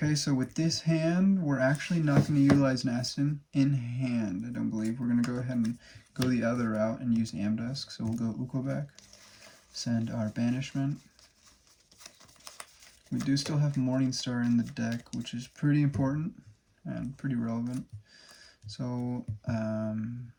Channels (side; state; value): both; identical; correlation 1.00